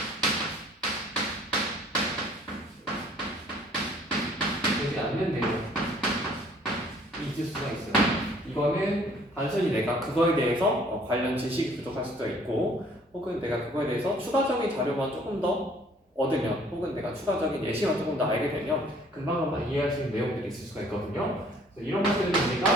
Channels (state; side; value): normal; both; correlation 0.57